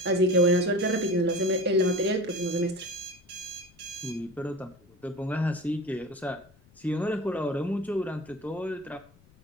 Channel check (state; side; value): noise; left; rumble, 28 dB below the sound